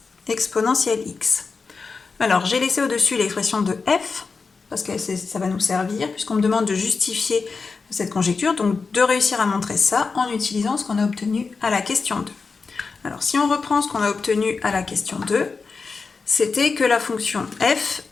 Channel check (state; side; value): quieter; right; 4.7 dB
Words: exponentielle x. Alors, j'ai laissé au-dessus l'expression de f, parce que ça va nous servir, puisqu'on me demande de justifier cette conjecture, donc de réussir à montrer ça en utilisant ce qu'on a obtenu à la question 2. Alors, si on reprend ce qu'on a obtenu à la question 2, c'était que la fonction f